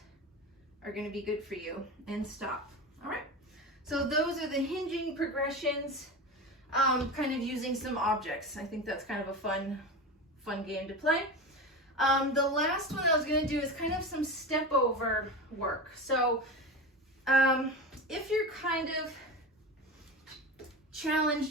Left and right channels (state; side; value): normal; both; correlation 0.26